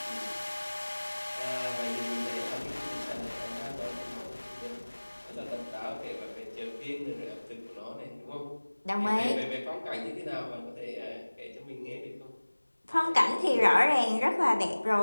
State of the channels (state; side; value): inverted; both; correlation -1.00